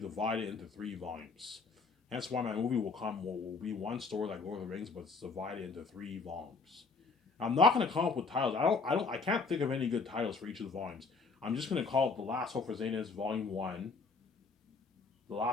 into 3 volumes. Hence why my movie will be one story like Lord of the Rings, but it's divided into 3 volumes. I'm not going to come up with titles. I can't think of any good titles for each of the volumes. I'm just going to call it The Last Hope for Zanus Volume 1, The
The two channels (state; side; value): quieter; right; 4.4 dB